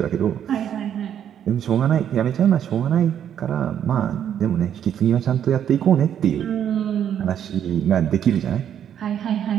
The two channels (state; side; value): quieter; left; 9.4 dB